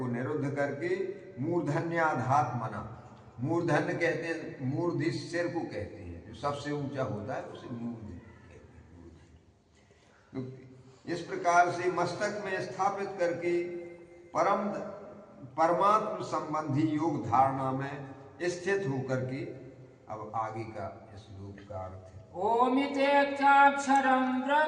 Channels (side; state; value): both; identical; correlation 1.00